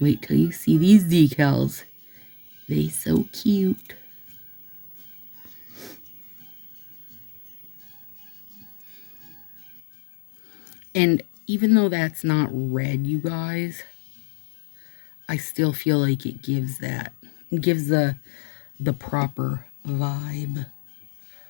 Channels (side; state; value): right; drops out; at 9.8 s